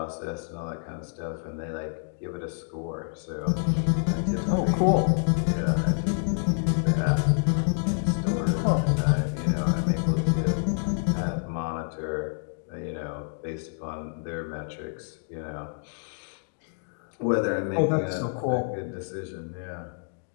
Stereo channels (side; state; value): right; silent; 60 dB below the other